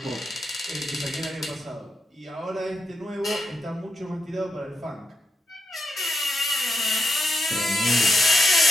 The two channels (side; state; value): both; normal; correlation 0.82